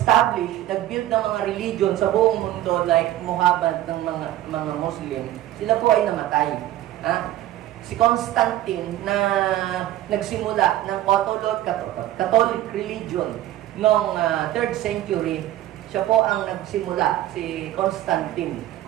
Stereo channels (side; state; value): left; quieter; 13.8 dB